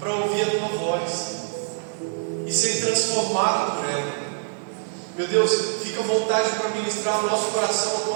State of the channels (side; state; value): left; silent; digital silence